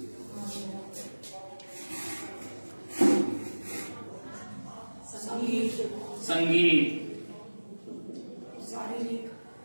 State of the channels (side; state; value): both; inverted; correlation -1.00